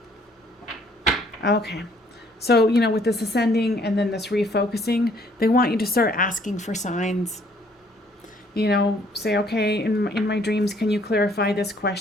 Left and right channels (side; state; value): both; normal; correlation 0.63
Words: Okay. So, you know, with this ascending and then this refocusing, they want you to start asking for signs. You know, say, okay, in my dreams, can you clarify this